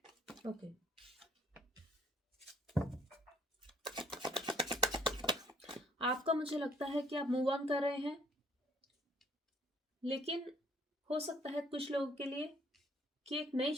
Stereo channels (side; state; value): both; normal; correlation 0.62